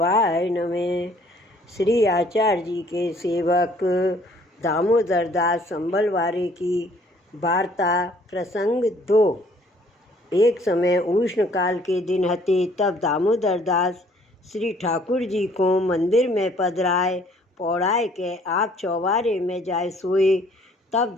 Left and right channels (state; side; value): normal; both; correlation 0.60